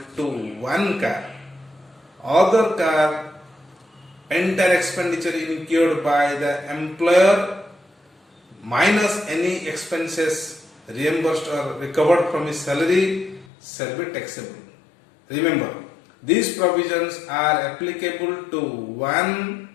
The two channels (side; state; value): right; drops out; at 13.5 s